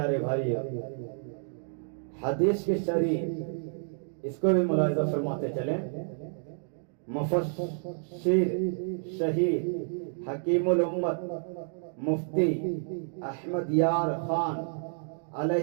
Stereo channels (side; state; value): left; silent; digital silence